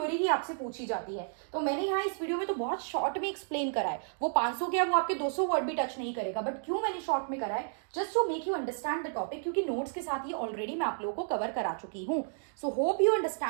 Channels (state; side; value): silent; left; digital silence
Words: ही आपसे पूछी जाती है, तो मैंने यहाँ इस वीडियो में तो बहुत शॉर्ट में एक्सप्लेन करा है। वो 500 क्या वो आपके 200 वर्ड भी टच नहीं करेगा, बट क्यों मैंने शॉर्ट में करा है, just to make you understand the topic, क्योंकि नोट्स के साथ ये ऑलरेडी मैं आप लोगों को कवर करा चुकी हूँ। सो होप यू